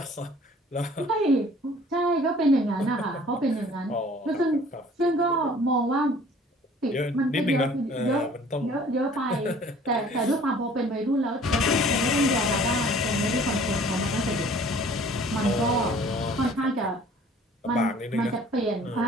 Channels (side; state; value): both; normal; correlation 0.52